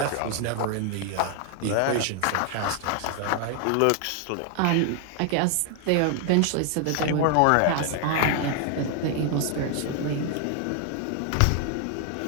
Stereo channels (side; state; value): both; different; correlation 0.00